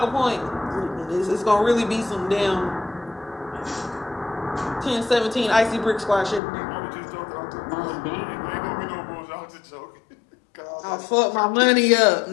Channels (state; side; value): drops out; right; at 6.4 s